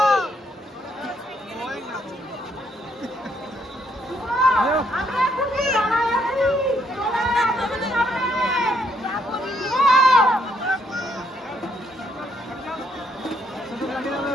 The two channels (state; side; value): normal; both; correlation 0.72